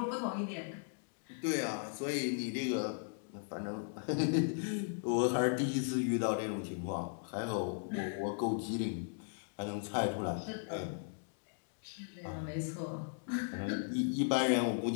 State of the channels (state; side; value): silent; right; digital silence